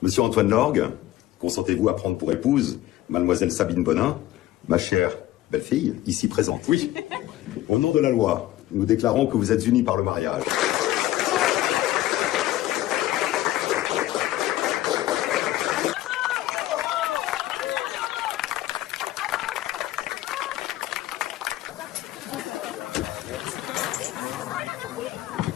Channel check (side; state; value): right; quieter; 15.0 dB